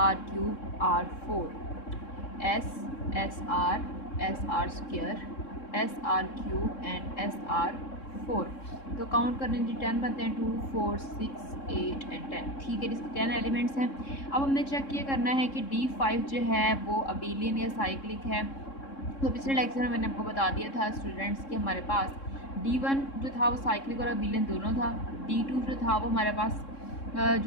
R³, R4, S, SR, SR², SR³ and SR4। तो काउंट करने जी 10 बनते हैं, 2 4 6 8 एंड 10। ठीक है, इसके 10 एलिमेंट्स हैं। अब हमने चेक ये करना है कि D5 जो है वो अबेलियन या साइक्लिक है। तो पिछले लेक्चर में मैंने आपको बता दिया था स्टूडेंट्स कि हमारे पास D1 जो था वो साइक्लिक और अबेलियन दोनों था। D2 जो था वो हमारे पास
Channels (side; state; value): right; late; 3.7 ms